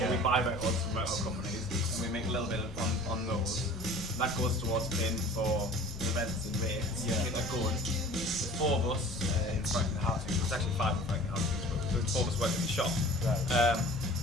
or we buy records from record companies, and we make a little bit on those. That goes towards paying for events and rates. Get that going. There's 4 of us in Franklin Housing. There's actually 5 in Franklin Housing, but there's 4 of us working in the shop. Right.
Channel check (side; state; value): both; normal; correlation 0.44